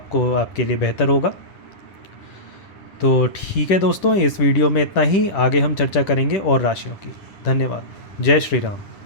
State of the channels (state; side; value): late; right; 10 ms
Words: आपके लिए बेहतर होगा। तो ठीक है दोस्तों, इस वीडियो में इतना ही। आगे हम चर्चा करेंगे और राशियों की। धन्यवाद। जय श्री राम।